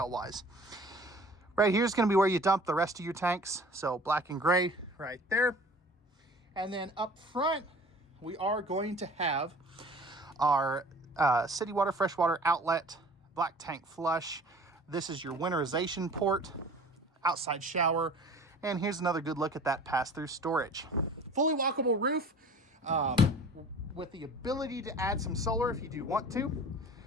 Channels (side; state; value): both; normal; correlation 0.45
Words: wise. Right here is going to be where you dump the rest of your tanks. So black and gray right there. And then up front, we are going to have our city water, freshwater outlet, black tank flush. This is your winterization port, outside shower. And here's another good look at that pass-through storage. Fully walkable roof. With the ability to add some solar if you do want to.